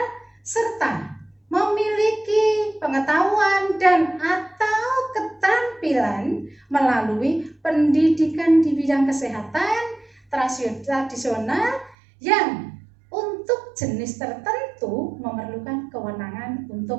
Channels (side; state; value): left; drops out; at 12.0 s